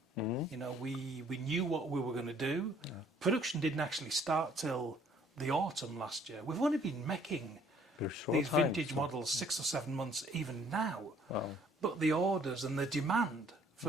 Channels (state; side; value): normal; both; correlation 0.60